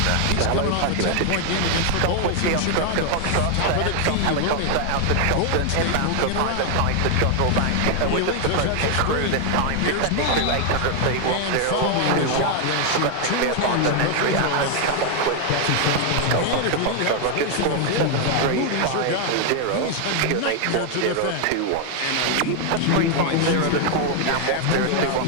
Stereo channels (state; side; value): different; both; correlation 0.00